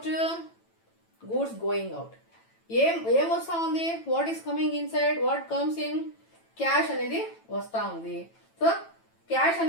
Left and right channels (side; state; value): right; late; 9.0 ms